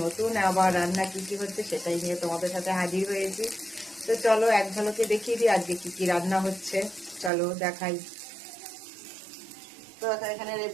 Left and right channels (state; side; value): drops out; left; at 7.3 s